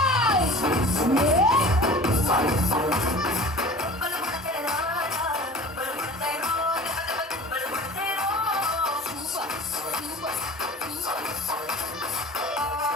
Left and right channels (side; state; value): both; normal; correlation 0.40